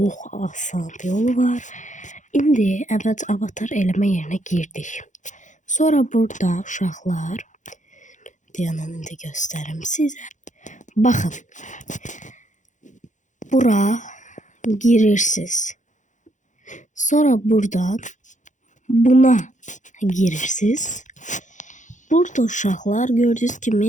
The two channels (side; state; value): right; late; 0.36 ms